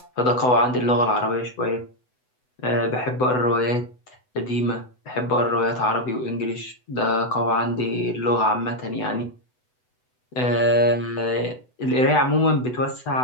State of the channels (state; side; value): late; right; 8.0 ms